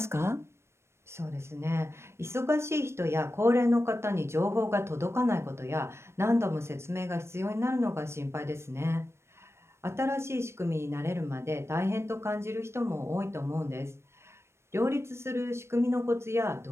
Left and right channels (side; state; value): left; late; 0.13 ms